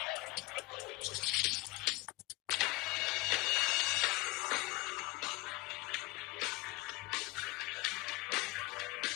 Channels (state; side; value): quieter; right; 21.7 dB